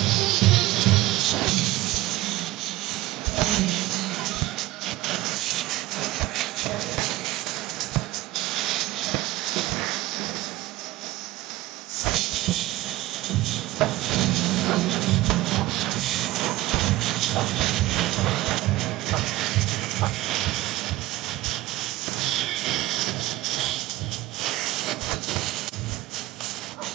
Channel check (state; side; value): quieter; left; 17.3 dB